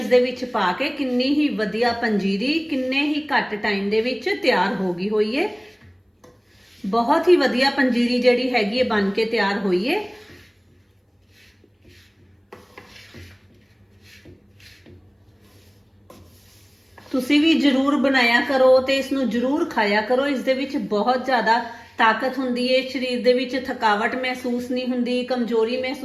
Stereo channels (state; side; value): identical; both; correlation 1.00